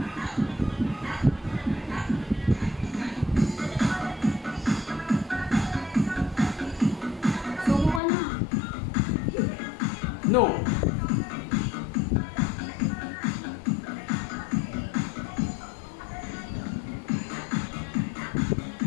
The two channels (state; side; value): drops out; right; at 8.0 s